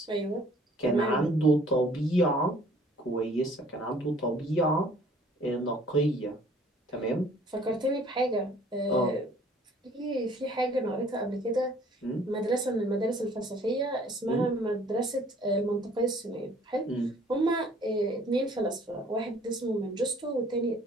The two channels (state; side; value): normal; both; correlation 0.56